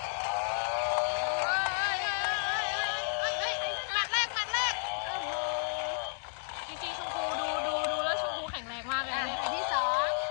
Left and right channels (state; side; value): silent; right; digital silence